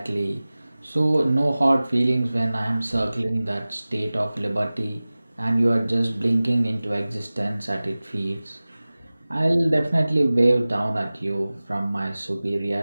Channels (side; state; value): both; inverted; correlation -0.98